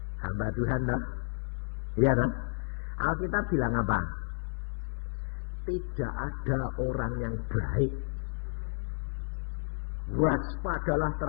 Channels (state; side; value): silent; right; 57 dB below the other